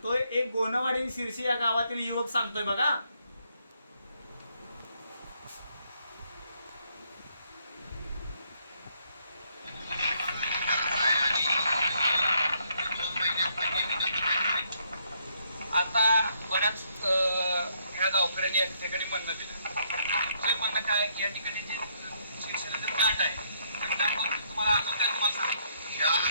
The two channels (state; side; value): inverted; both; correlation -0.72